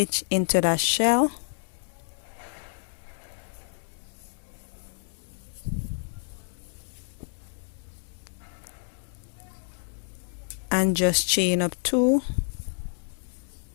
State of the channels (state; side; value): silent; right; digital silence